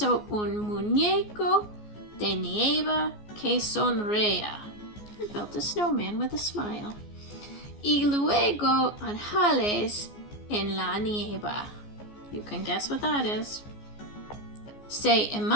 un muñeco de nieve que sonreía. He built a snowman with a smile. Y luego anjales en la nieve. You can guess what that is. Se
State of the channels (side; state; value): right; late; 14 ms